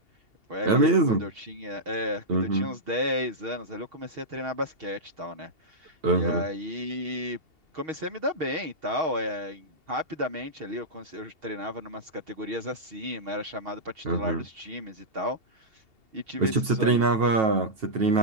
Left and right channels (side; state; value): left; late; 2.7 ms